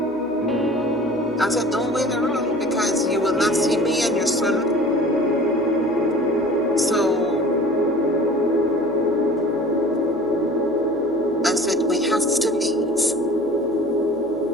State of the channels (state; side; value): normal; both; correlation 0.44